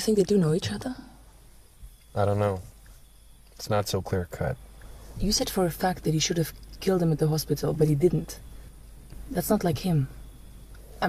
they do know each other? I don't know. It's not so clear-cut. You said for a fact that he should have killed him at the hospital, but he didn't. That's not like him. I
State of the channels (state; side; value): identical; both; correlation 1.00